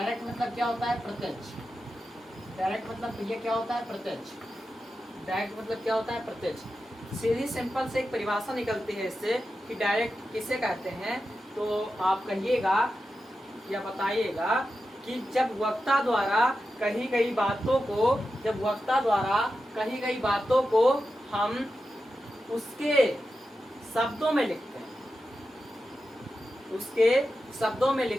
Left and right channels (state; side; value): normal; both; correlation 0.90